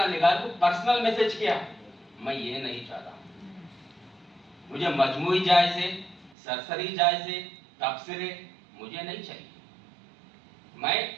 نگار کو پرسنل میسج کیا، میں یہ نہیں چاہتا، مجھے مجموعی جائزے، سرسری جائزے، تبصرے مجھے نہیں چاہیے. میں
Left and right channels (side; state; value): left; drops out; at 6.4 s